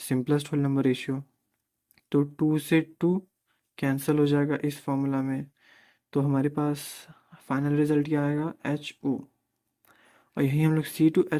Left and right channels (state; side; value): identical; both; correlation 1.00